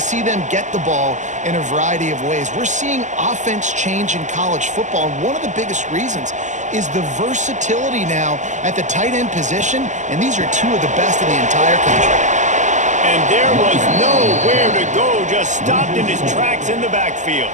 see them get the ball in a variety of ways. We're seeing offense change in college football, and one of the biggest reasons is the versatility now at the tight end position, and these are two of the best in the entire country. And there was nowhere to go, just stopped in his tracks in the backfield.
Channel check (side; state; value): left; late; 0.35 ms